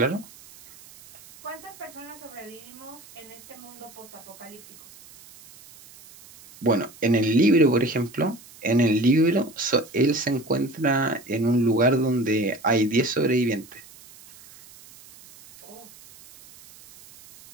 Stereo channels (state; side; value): noise; right; hiss, 22 dB below the sound